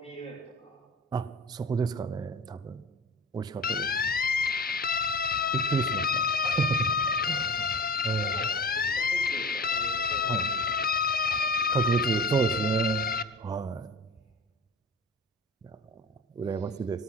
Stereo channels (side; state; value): both; normal; correlation 0.35